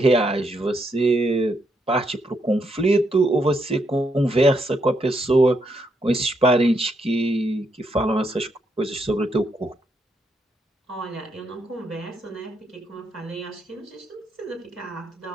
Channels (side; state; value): both; normal; correlation 0.78